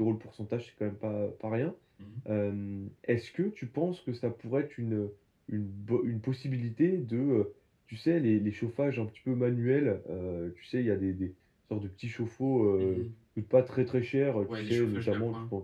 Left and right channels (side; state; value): both; identical; correlation 1.00